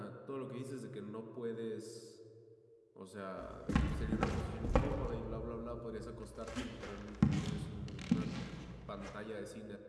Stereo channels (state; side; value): identical; both; correlation 1.00